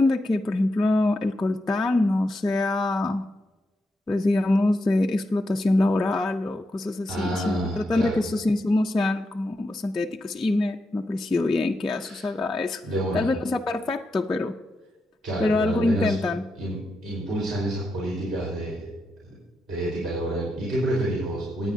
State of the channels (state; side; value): normal; both; correlation 0.85